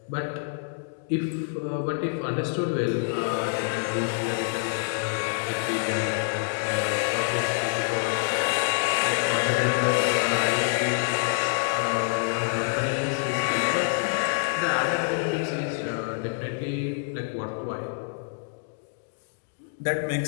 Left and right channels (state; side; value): silent; right; digital silence